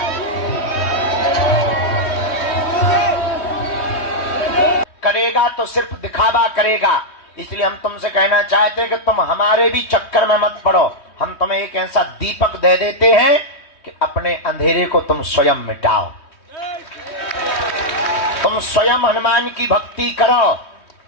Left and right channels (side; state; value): right; late; 3.1 ms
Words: करेगा तो सिर्फ दिखावा करेगा। इसलिए हम तुमसे कहना चाहते हैं कि तुम हमारे भी चक्कर में मत पड़ो। हम तुम्हें एक ऐसा दीपक दे देते हैं कि अपने अंधेरे को तुम स्वयं मिटाओ। तुम स्वयं हनुमान की भक्ति करो,